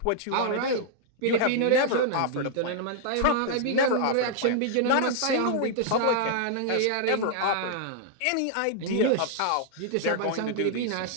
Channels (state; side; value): different; both; correlation -0.01